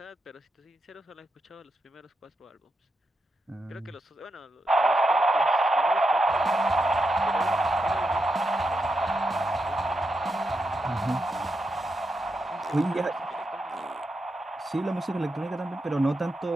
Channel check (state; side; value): normal; both; correlation 0.85